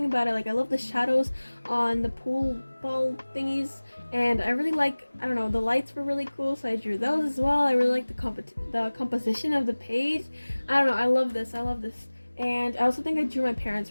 about it. Like, I love the shadows on the pool ball thingies, and I really like, I don't know, the lights were really cool, so I drew those as well. I really like the composition of the page. I don't know, I love this. And I also think I drew my parents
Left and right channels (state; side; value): inverted; both; correlation -1.00